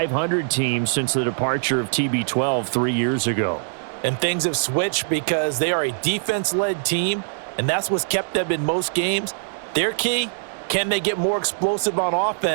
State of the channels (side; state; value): left; silent; digital silence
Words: team since the departure of TB12 3 years ago. And things have switched because they are a defense-led team, and that's what's kept them in most games. Their key, can they get more explosive on